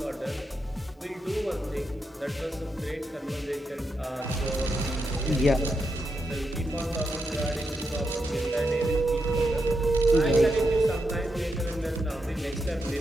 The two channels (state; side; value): normal; both; correlation 0.84